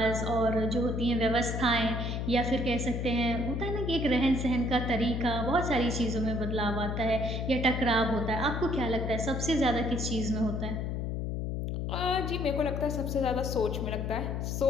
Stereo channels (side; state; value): left; noise; hum, 2 dB below the sound